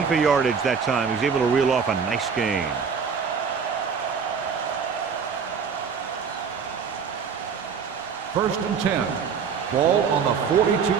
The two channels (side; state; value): left; quieter; 6.3 dB